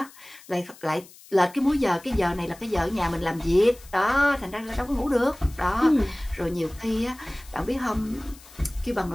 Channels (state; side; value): noise; left; hiss, 22 dB below the sound